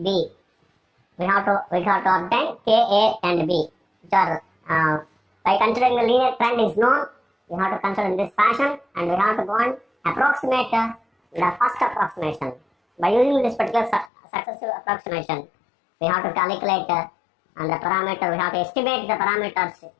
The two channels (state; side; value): drops out; right; at 14.1 s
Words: B. We have to obtain K, A and B, which are by considering the linear trend is known, we have to consider in this fashion, and we have to go and approximate the first approximation. By using this particular successive approximation, we have to calculate and the parameter, we have to estimate the parameters